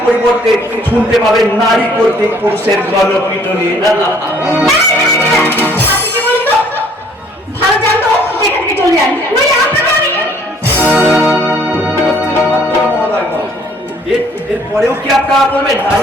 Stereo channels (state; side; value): normal; both; correlation 0.59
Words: পরিবর্তে শুনতে পাবেন নারী কর্তৃক পুরুষের গণপিটুনি। ভালো জানতো এখান থেকে চলে যান, নইলে আপনাকে আমি এরপরেও কি আপনারা বলবেন